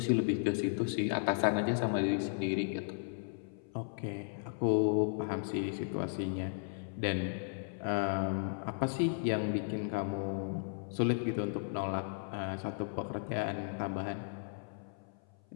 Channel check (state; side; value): silent; right; 54 dB below the other